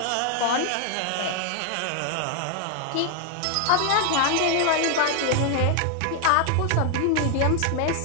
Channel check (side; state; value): both; different; correlation 0.00